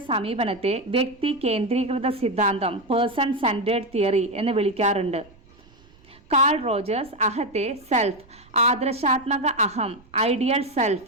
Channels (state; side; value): noise; right; rumble, 27 dB below the sound